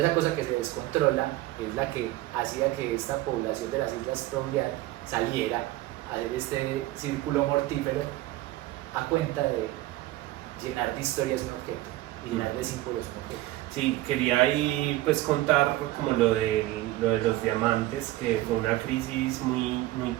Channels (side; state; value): left; quieter; 16.8 dB